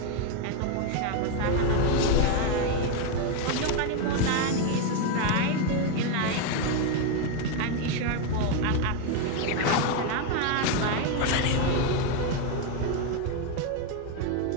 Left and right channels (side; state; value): both; different; correlation 0.02